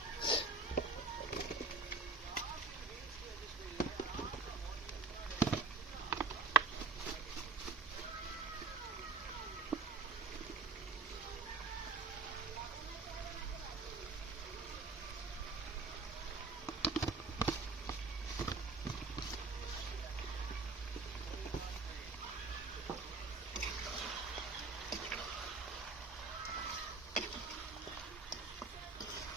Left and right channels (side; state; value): left; quieter; 3.9 dB